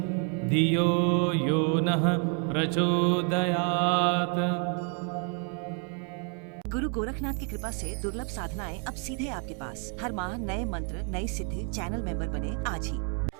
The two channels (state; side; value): quieter; left; 39.9 dB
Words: धियो यो नः प्रचोदयात्। गुरु गोरखनाथ की कृपा से दुर्लभ साधनाएं अब सीधे आपके पास। हर माह नए मंत्र नई सिद्धि चैनल मेंबर बने आज ही।